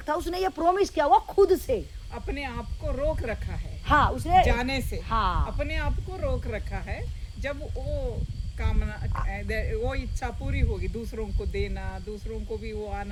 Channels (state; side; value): identical; both; correlation 1.00